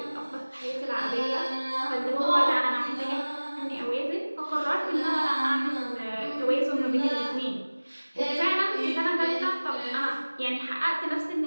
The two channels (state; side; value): inverted; both; correlation -1.00